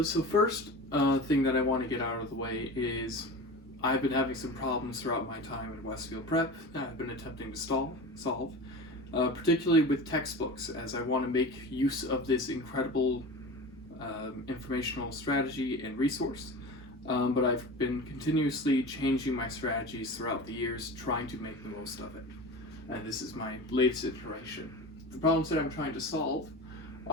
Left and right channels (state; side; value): normal; both; correlation 0.32